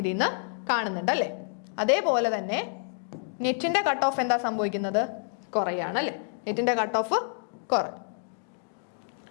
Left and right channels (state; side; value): silent; right; 59 dB below the other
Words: ഇതിൽ നിന്ന് കാണുന്നുണ്ട് അല്ലേ. അതേപോലെ തന്നെ നെറ്റിന്റെ കട്ട് ഓഫ് എന്താ സംഭവിക്കുന്നത്? കുറയാണ് അല്ലേ. നെറ്റിന്റെ കട്ട് ഓഫ് കുറഞ്ഞു.